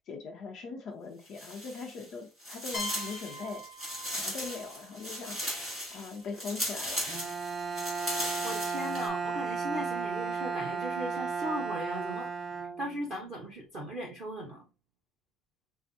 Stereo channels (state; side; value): normal; both; correlation 0.65